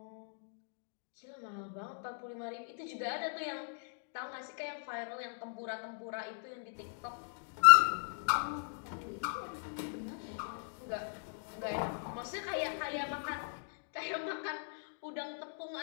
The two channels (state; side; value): silent; right; digital silence